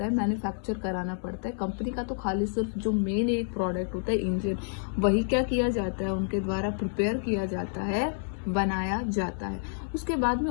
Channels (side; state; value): right; silent; digital silence